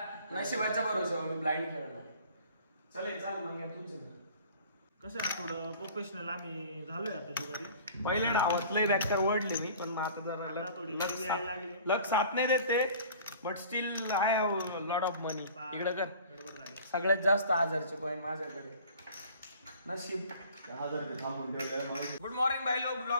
नशिबाच्या भरोसा मी ब्लाइंड खेळणार. चल चाल मग तुमचं कसं आहे थोडं प्रोफेशनल आम्ही झालोय आता जुगारी. पहिल्या डावात लय बॅकर ओढले मी पण मग आता जरा थोडी लागली लक साथ नाही देते but still I have lot of money. इकडं कर. गडबड झाली. सगळ्यात जास्त 1000चे कॉइन माझ्याकडे. नशीब 1000 थांबून ठेवलं. गुड मॉर्निंग भाई लोक.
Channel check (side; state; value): both; inverted; correlation -0.48